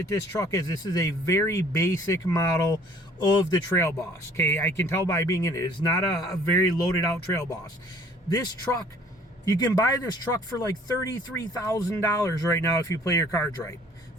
this truck is, this is a very basic model of the Trail Boss. Okay, I can tell by being in it. It's not a very loaded out Trail Boss. This truck, you can buy this truck for like $33,000 right now if you play your cards right.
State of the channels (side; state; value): both; normal; correlation 0.55